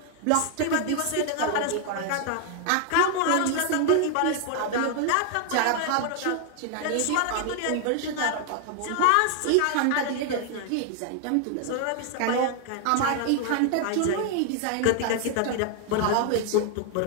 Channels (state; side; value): different; both; correlation 0.00